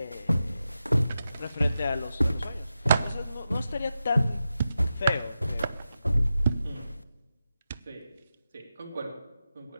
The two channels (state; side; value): inverted; both; correlation -0.90